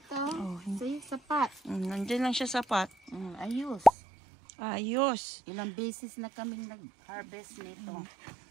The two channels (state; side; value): drops out; left; at 3.9 s